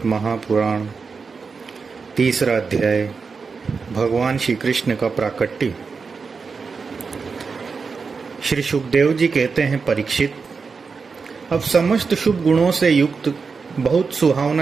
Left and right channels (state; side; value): quieter; left; 5.0 dB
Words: महापुराण तीसरा अध्याय। भगवान श्री कृष्ण का प्राकट्य। श्री सुखदेव जी कहते हैं, परीक्षित, अब समस्त शुभ गुणों से युक्त बहुत